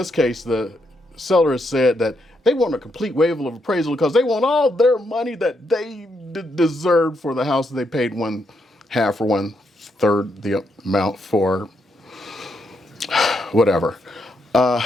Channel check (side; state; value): both; normal; correlation 0.79